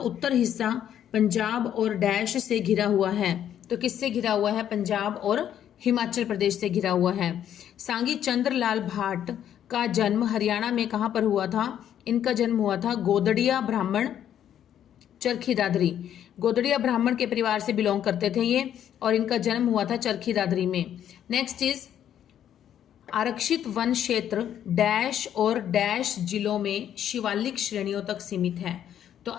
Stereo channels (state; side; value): quieter; right; 10.1 dB